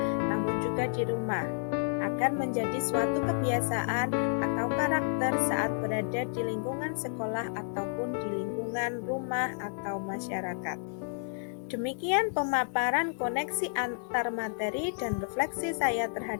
namun juga di rumah, agar menjadi suatu kebiasaan atau karakter saat berada di lingkungan sekolah ataupun di lingkungan rumah atau masyarakat. Demikian pemaparan koneksi antar materi dan refleksi saya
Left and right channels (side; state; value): right; silent; digital silence